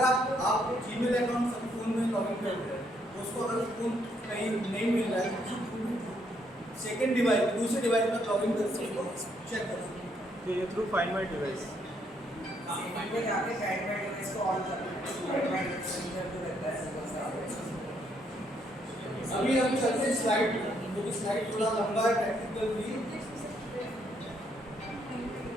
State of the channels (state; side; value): normal; both; correlation 0.72